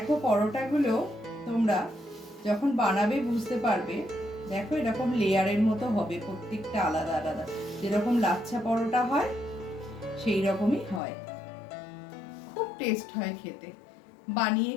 পরোটাগুলো তোমরা যখন বানাবে বুঝতে পারবে। দেখো এরকম লেয়ারের মতো হবে, প্রত্যেকটা আলাদা আলাদা, যেরকম লাচ্ছা পরোটা হয় সেই রকমই হয়। খুব টেস্ট হয় খেতে, বানিয়ে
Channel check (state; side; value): drops out; right; at 11.0 s